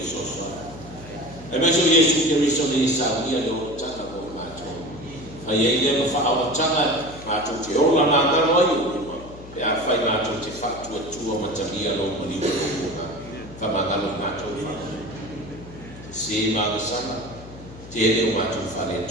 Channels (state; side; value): noise; left; hum, 17 dB below the sound